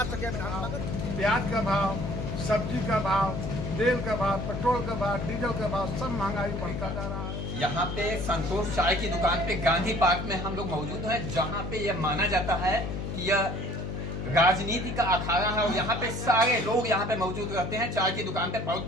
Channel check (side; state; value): left; noise; hum, 4 dB below the sound